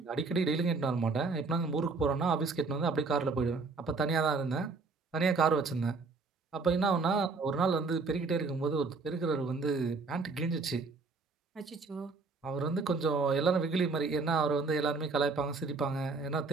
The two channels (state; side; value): quieter; left; 4.1 dB